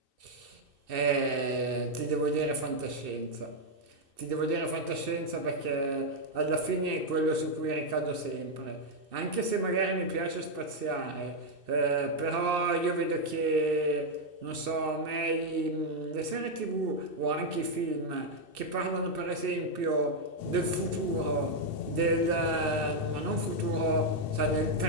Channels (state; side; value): late; left; 2.6 ms